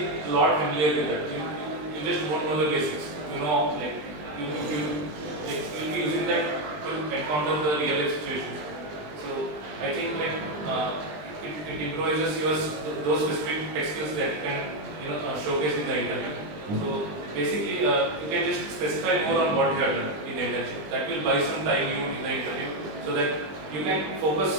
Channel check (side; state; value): left; late; 20 ms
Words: a lot familiar with that. You just won't know the basics. You know, like you will be using that to encounter the real life situations. So I think like it improvises those specific tech skills that you can showcase in the interview. So basically, you can just specify more on what you have done in the internship. That will buy some time you in the interview, so that you can